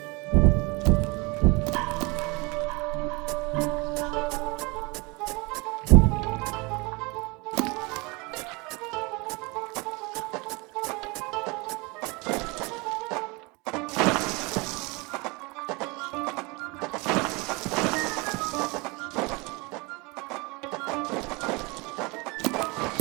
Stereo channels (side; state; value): left; quieter; 26.9 dB